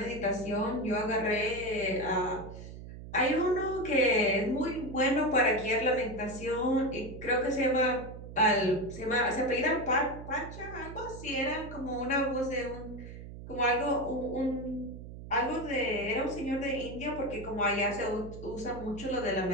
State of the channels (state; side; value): noise; right; hum, 12 dB below the sound